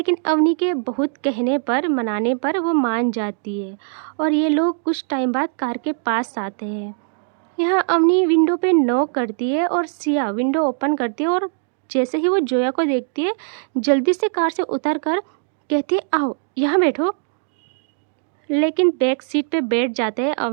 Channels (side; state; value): left; silent; digital silence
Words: अवनी के बहुत कहने पर मनाने पर वो मान जाती है और ये लोग कुछ टाइम बाद कार के पास आते हैं। यहाँ अवनी विंडो पे नॉक करती है और सिया विंडो ओपन करती है और जैसे ही वो जोया को देखती है जल्दी से कार से उतर कर कहती है आओ यहाँ बैठो। लेकिन बैक सीट पे बैठ जाते हैं